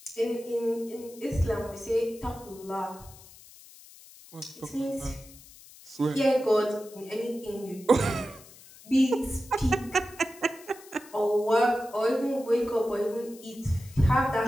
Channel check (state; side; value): noise; left; hiss, 21 dB below the sound